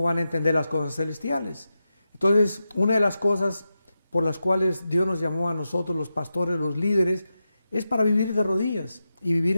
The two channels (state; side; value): inverted; both; correlation -0.89